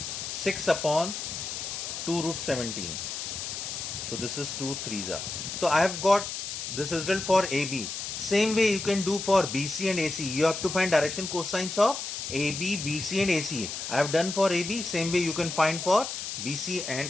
6 upon 2 root 17. So this is 2 3s are. So I have got this result for AB. Same way you can do for BC and AC. You have to find direction cosines of AB, BC and AC. I have done for AB. Same way you can find for BC and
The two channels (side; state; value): left; noise; hiss, 6 dB below the sound